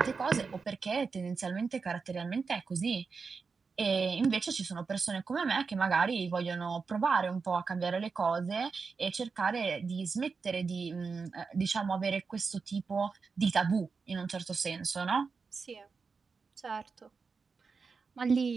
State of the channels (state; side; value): quieter; left; 5.0 dB